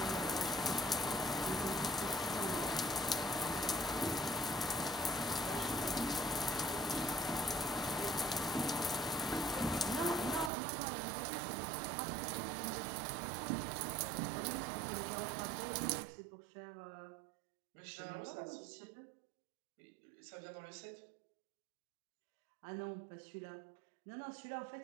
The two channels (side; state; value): left; drops out; at 10.5 s